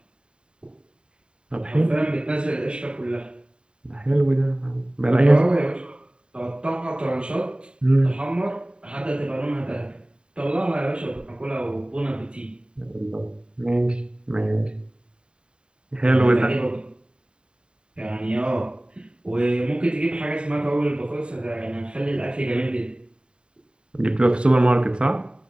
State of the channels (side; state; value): left; late; 0.051 ms